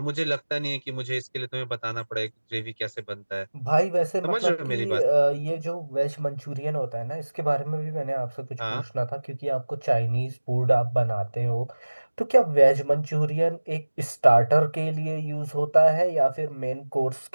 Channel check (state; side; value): inverted; both; correlation -1.00